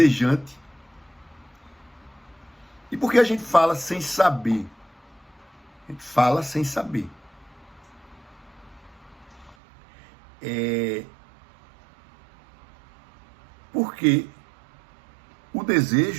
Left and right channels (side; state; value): left; drops out; at 9.6 s